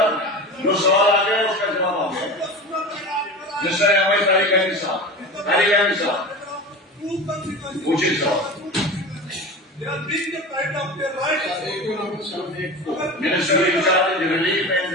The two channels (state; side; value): normal; both; correlation 0.30